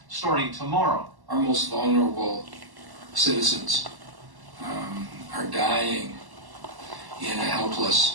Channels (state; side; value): late; left; 1.1 ms